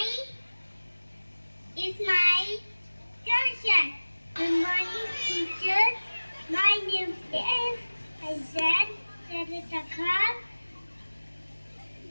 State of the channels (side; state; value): both; inverted; correlation -1.00